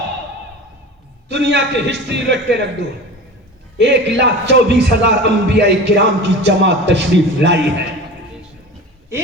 دنیا کے ہسٹری رکھ کے رکھ دو، 1,24,000 انبیاء کرام کی جماعت تشریف لائی ہے۔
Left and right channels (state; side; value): normal; both; correlation 0.34